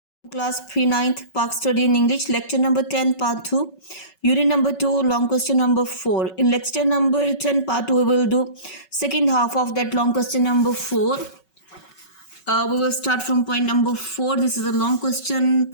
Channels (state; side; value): late; right; 5.3 ms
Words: Class 3 9th Park Study in English, lecture number 10 part 2, unit number 2, long question number 4. In lecture number 10 part 2 we will do second half of that long question number 4. We will start from point number 4. This is a long question,